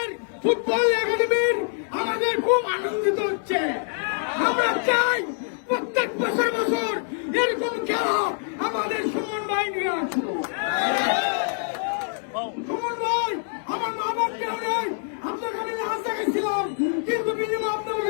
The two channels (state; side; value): silent; right; 62 dB below the other